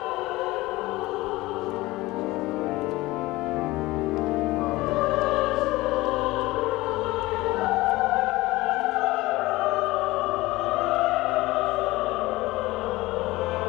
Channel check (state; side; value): quieter; right; 19.6 dB